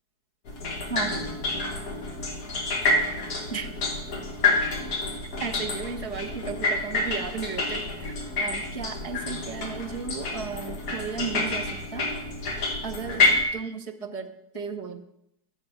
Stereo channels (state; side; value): late; right; 4.7 ms